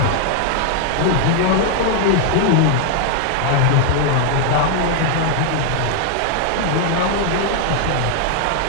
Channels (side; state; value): both; different; correlation 0.00